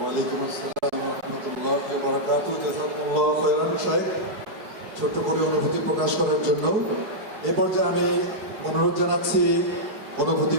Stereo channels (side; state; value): left; late; 4.6 ms